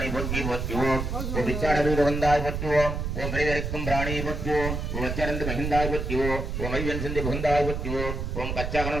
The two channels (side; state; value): right; noise; rumble, 3 dB below the sound